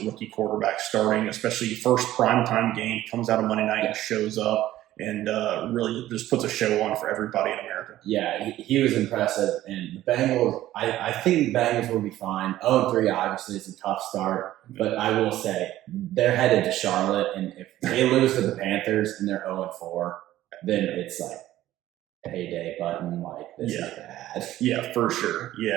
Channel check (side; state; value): left; quieter; 14.3 dB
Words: rookie quarterback starting, especially first primetime game, comes out on Monday night and shows up and really just puts a show on for everybody in America. Yeah, he was impressive. And the Bengals, I think the Bengals will be fine. 0-3 obviously is a tough start. But I will say, they're headed to Charlotte. And if they lose to the Panthers and they're 0-4, then it's like, payday button, like this is bad. Yeah, for sure.